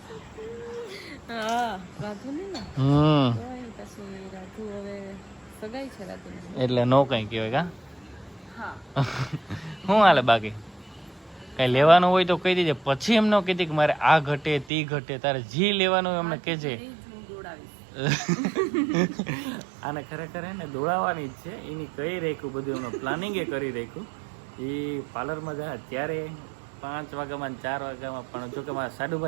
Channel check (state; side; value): drops out; left; at 14.7 s